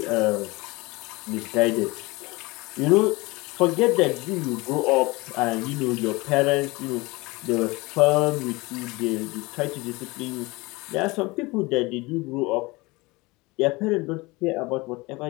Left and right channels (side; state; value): right; quieter; 23.4 dB